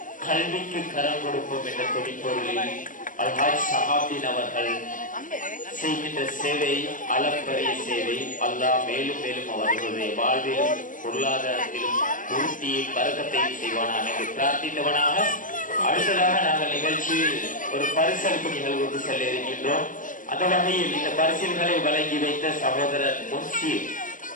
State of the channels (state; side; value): late; right; 0.38 ms